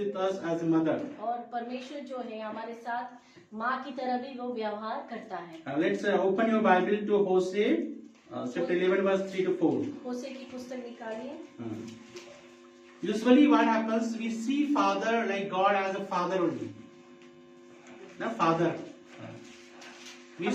us as a mother. और परमेश्वर जो है हमारे साथ माँ की तरह भी वो व्यवहार करता है। Let's open your Bible to Hosea, chapter 11, verse 3 to 4. होशे की पुस्तक निकालिए। Usually what happens, we see father like God as a father only. The father. We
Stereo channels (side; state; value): both; identical; correlation 1.00